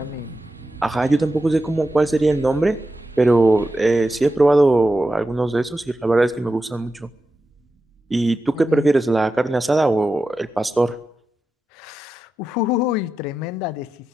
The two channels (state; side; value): normal; both; correlation 0.91